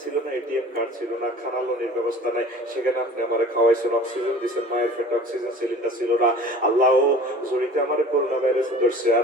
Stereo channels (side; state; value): both; normal; correlation 0.43